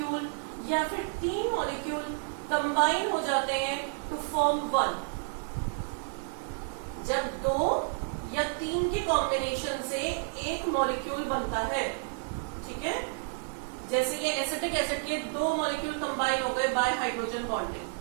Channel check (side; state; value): left; silent; 57 dB below the other